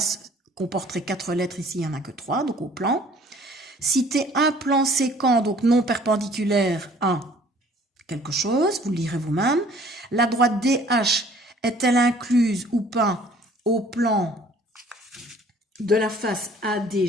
comporterait 4 lettres, ici il n'y en a que 3, donc au plan. Citer un plan séquent, donc non perpendiculaire à quelque chose, vous le lirez vous-même. La droite DH est-elle incluse ou pas au plan de la face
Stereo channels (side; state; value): both; normal; correlation 0.54